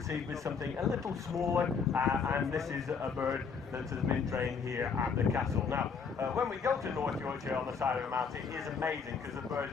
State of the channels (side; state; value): right; quieter; 5.7 dB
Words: with something a little smaller, and this is a bird that has been trained here at the castle. Now, when we go to North Yorkshire on the side of the mountain, it is amazing because the birds